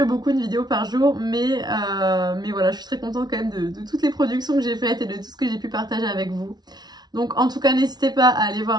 beaucoup une vidéo par jour, mais voilà, je suis très contente quand même de toutes les productions que j'ai faites et de tout ce que j'ai pu partager avec vous. Donc en tout cas, n'hésitez pas à aller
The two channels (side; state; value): left; late; 0.19 ms